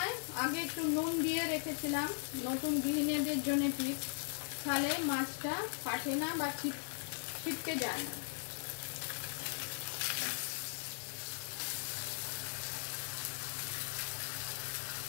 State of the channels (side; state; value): right; silent; digital silence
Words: আগে একটু নুন দিয়ে রেখেছিলাম, নতুন গৃহিণীদের জন্য টিপস, তাহলে মাছটা ফাটে না বা ছিটকে যায় না।